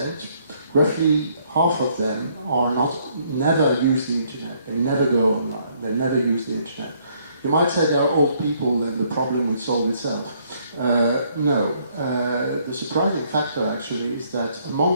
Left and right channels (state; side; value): inverted; both; correlation -0.67